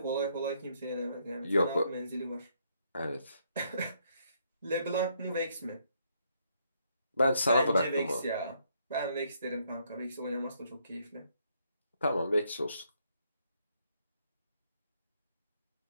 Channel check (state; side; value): inverted; both; correlation -0.72